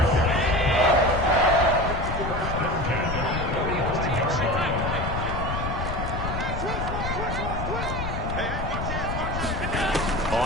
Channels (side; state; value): left; noise; rumble, 4 dB below the sound